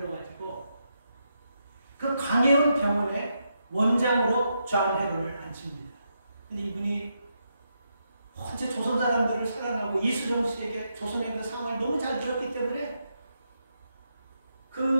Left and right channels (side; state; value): both; inverted; correlation -0.82